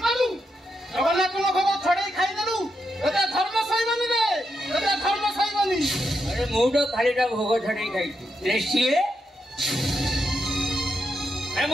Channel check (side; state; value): both; normal; correlation 0.83